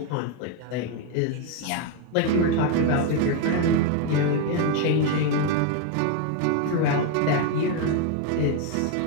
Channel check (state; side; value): different; both; correlation 0.01